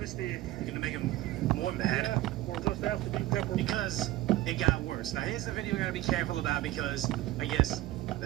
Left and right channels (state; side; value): quieter; left; 16.1 dB